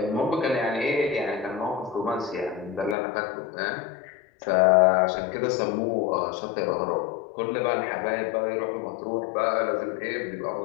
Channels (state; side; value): drops out; right; at 3.0 s